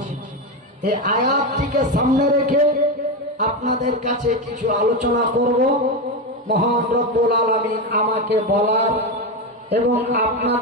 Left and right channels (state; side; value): normal; both; correlation 0.13